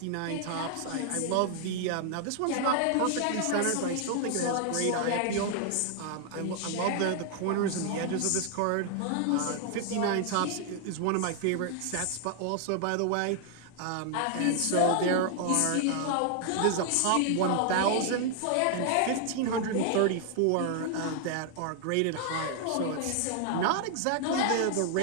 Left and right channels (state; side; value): different; both; correlation 0.00